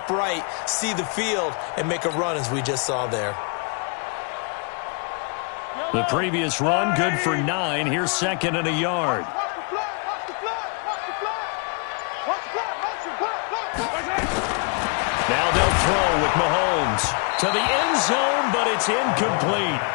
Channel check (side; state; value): right; quieter; 38.2 dB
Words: see the field, and make a run as we just saw there. The previous run, good for 9. Here's 2nd and a yard. Now they'll throw with Mahomes to the end zone, but it's incomplete.